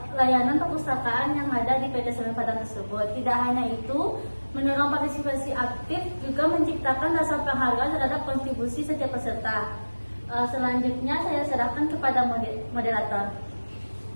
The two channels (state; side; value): inverted; both; correlation -1.00